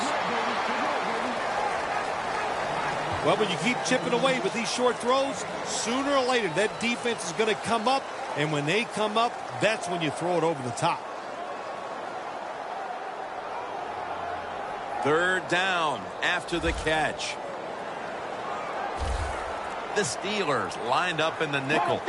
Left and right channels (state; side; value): identical; both; correlation 1.00